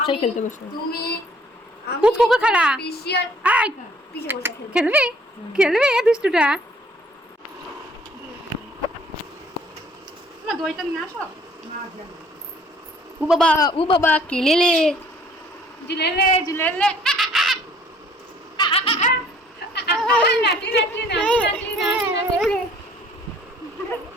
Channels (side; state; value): both; normal; correlation 0.58